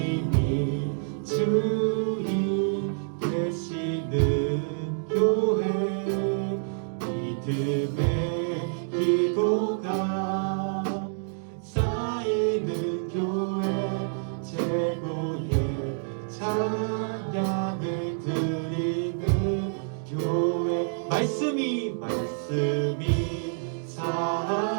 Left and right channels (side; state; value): left; silent; digital silence